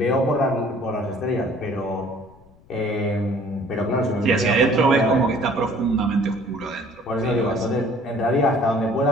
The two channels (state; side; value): noise; left; rumble, 28 dB below the sound